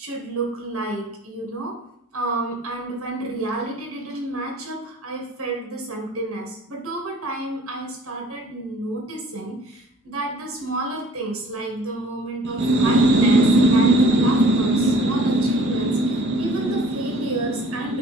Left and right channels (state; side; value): normal; both; correlation 0.51